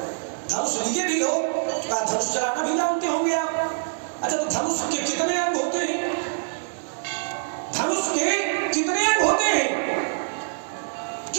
धनुष लिए भी हो, धनुष चलाना भी जानते होंगे आप। अच्छा, तो धनुष के कितने अंग होते हैं? धनुष के कितने अंग होते हैं?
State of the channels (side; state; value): left; silent; digital silence